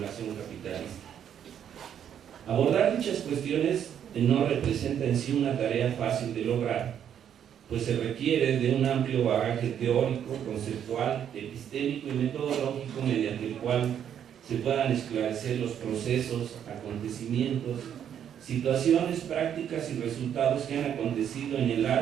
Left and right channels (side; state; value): left; quieter; 9.2 dB